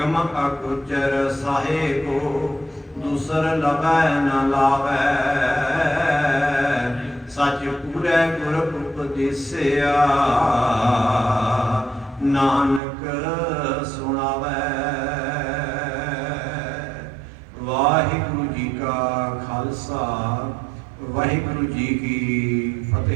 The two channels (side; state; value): left; drops out; at 12.8 s